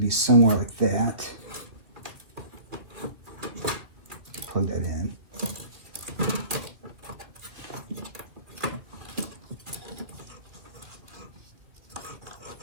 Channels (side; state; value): left; late; 2.6 ms